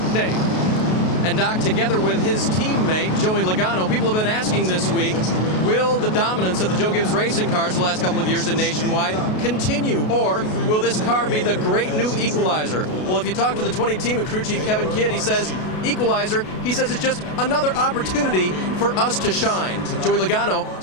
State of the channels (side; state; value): right; late; 33 ms